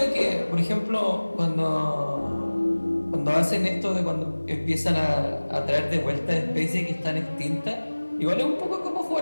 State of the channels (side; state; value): both; inverted; correlation -1.00